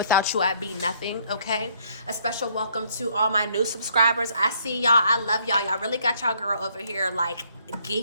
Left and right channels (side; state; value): both; inverted; correlation -0.66